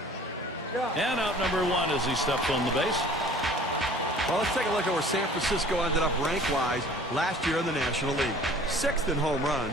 And out number 1 as he steps on the base. Well, let's take a look at where San Francisco ended up rank-wise last year in the National League. 6th in home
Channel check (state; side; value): normal; both; correlation 0.49